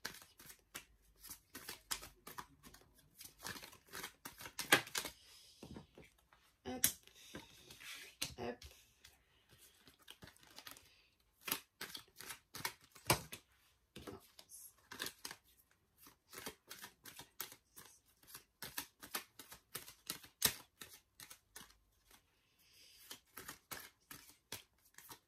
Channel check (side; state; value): both; identical; correlation 1.00